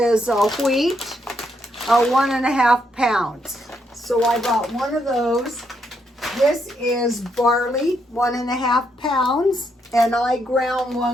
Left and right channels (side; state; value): both; normal; correlation 0.77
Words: wheat, 1.5 pounds. So I bought one of those. This is barley, 1.5 pounds, and I ground